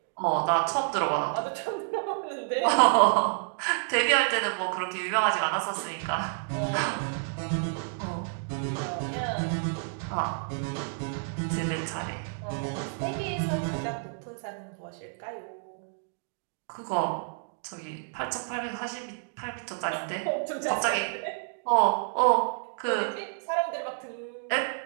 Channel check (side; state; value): left; silent; digital silence